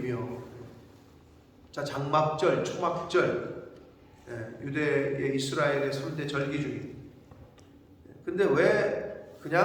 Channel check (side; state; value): both; identical; correlation 1.00